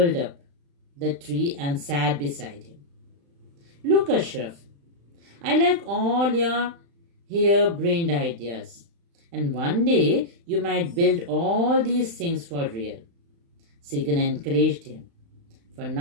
up the tree and sat beside him. Look, Ashraf, I like all your harebrained ideas. And one day you might build all these things for real. Segan encouraged him. For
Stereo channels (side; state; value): left; late; 35 ms